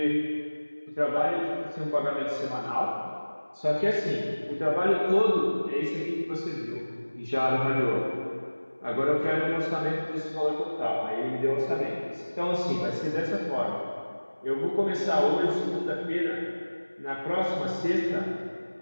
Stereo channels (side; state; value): both; inverted; correlation -1.00